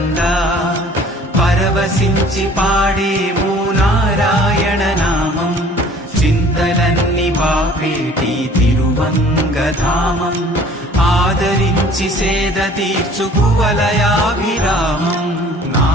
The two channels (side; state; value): both; normal; correlation 0.51